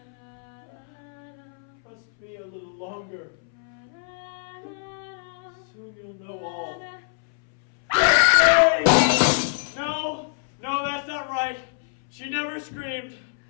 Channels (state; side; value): silent; right; 61 dB below the other